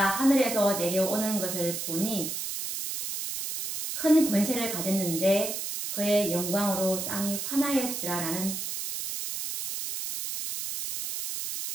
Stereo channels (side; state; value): right; noise; hiss, 5 dB below the sound